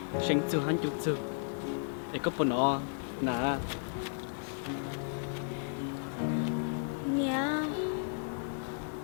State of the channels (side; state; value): right; silent; digital silence